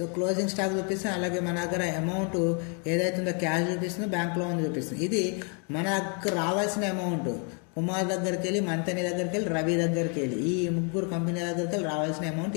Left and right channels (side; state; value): right; quieter; 38.5 dB